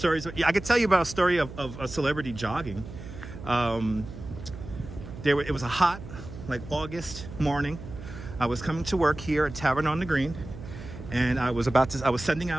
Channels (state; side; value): noise; right; hum, 12 dB below the sound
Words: I could tell you about a story of a celebrity jogging. It was a hot, like August morning. I was coming to work here at Tavern on the Green, and I was sending